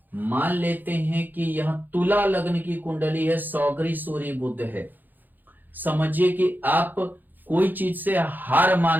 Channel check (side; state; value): left; late; 0.087 ms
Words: मान लेते हैं कि यहां तुला लग्न की कुंडली है, सौगरी सूर्य बुध है, समझिए कि आप कोई चीज से हार